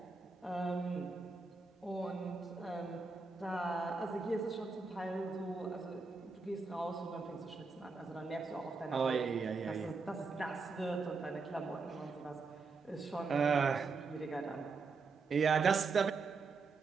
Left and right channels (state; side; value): quieter; left; 4.4 dB